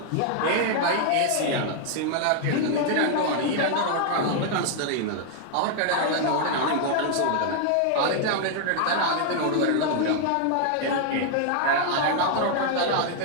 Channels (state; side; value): different; both; correlation 0.00